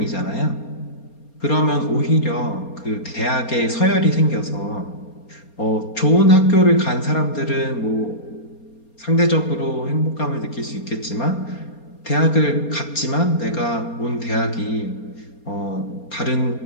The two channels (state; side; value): late; right; 4.3 ms